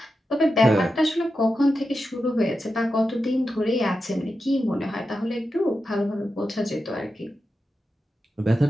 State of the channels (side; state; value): both; normal; correlation 0.90